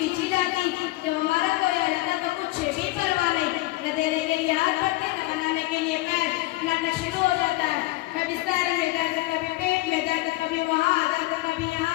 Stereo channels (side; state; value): right; quieter; 19.3 dB